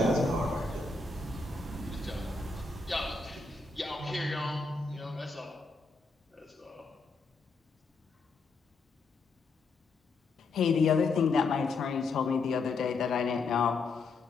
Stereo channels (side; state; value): right; quieter; 3.9 dB